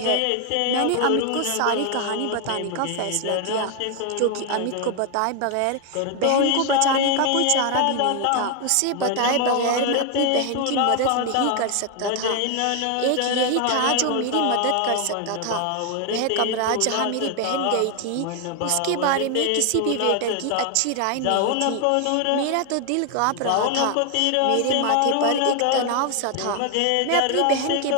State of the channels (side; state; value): both; different; correlation 0.01